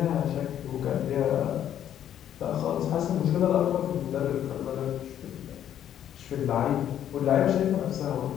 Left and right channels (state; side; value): quieter; right; 10.5 dB